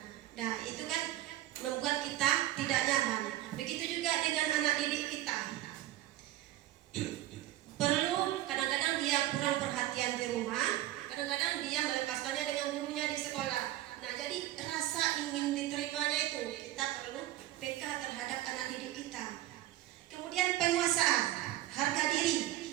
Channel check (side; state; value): left; quieter; 14.7 dB